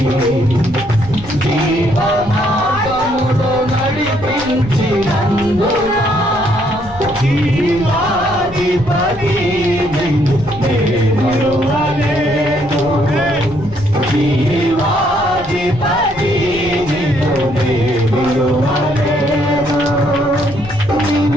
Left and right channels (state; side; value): noise; left; rumble, 17 dB below the sound